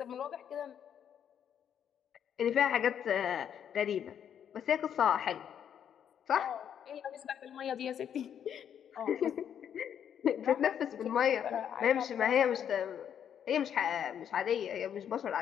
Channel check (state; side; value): quieter; right; 8.9 dB